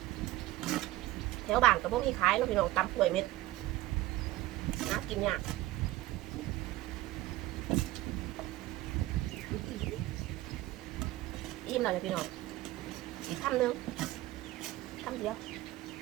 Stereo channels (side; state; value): left; quieter; 16.9 dB